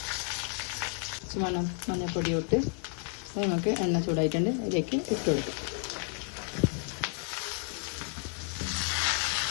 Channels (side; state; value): right; quieter; 38.9 dB